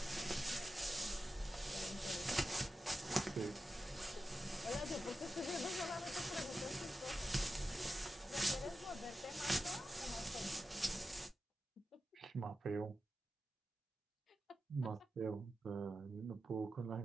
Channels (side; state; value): both; normal; correlation 0.91